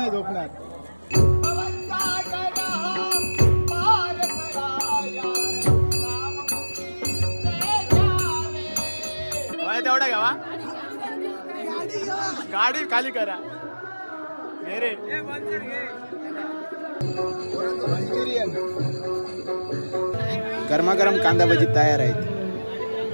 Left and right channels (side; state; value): both; inverted; correlation -1.00